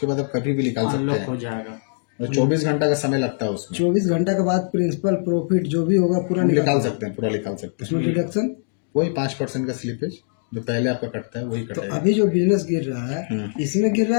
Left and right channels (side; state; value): right; silent; digital silence